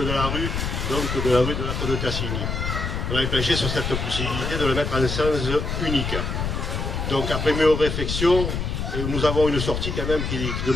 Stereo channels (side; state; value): left; noise; rumble, 2 dB below the sound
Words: la rue, donc de la rue de l'arc de Tassigny. On avait penché sur cette possibilité de le mettre en sens unique. Donc après mes réflexions, nous avons une sortie quand même qui